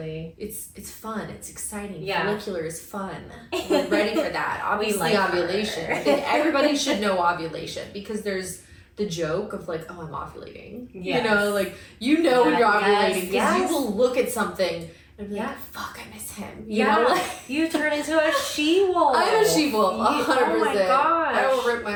It's fun. It's exciting. Follicular is fun. We're ready for that. Obviously, ovulation. I think everybody should know ovulation, because there's the joke of like, oh, I'm ovulating. Yes. You know, like when you're ovulating, because you will look at something and be like, fuck, I miss him. You know, like, you turn into a she-wolf. I'm a she-wolf, 100%. Oh my gosh. I will rip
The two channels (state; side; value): identical; both; correlation 1.00